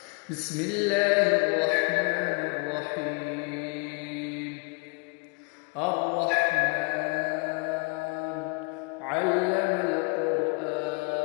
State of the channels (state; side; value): quieter; right; 32.6 dB